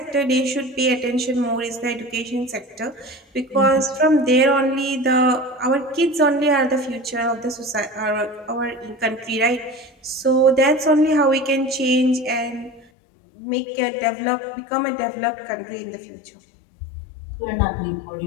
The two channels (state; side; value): drops out; right; at 12.9 s